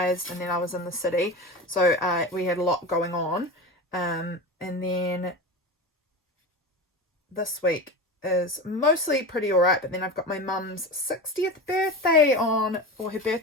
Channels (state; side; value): normal; both; correlation 0.27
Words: and then I was in the city, so we had a lot going on, and then this week is mostly pretty alright, but then I've got my mum's 60th birthday on, or her